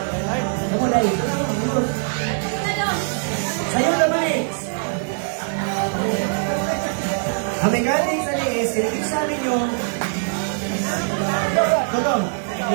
Kamu, dahil. Youth. Sa youth naman eh. Ang mechanics ano is, kinikip sa amin yung Totong,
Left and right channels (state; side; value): silent; left; 58 dB below the other